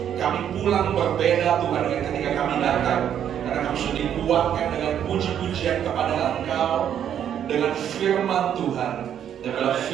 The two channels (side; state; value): left; quieter; 9.5 dB